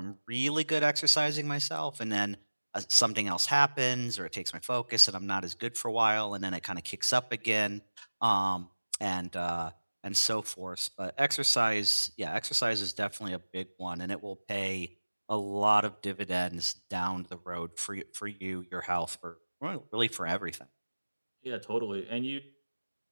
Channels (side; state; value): both; inverted; correlation -1.00